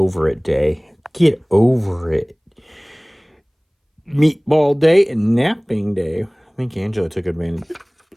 It Day. Get over it. Meatball Day and Napping Day. I think Angela took advantage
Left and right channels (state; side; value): identical; both; correlation 1.00